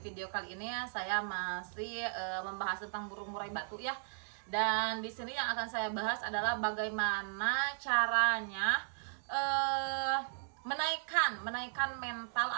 kali ini ya saya masih membahas tentang burung murai batu ya. Dan di sini yang akan saya bahas adalah bagaimana caranya menaikkan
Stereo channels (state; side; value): silent; left; digital silence